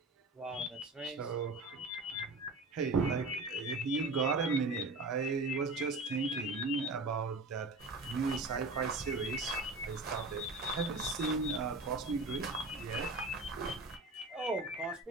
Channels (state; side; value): quieter; left; 3.1 dB